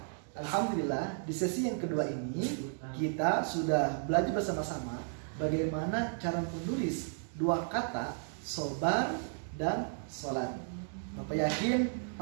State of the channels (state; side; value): silent; left; digital silence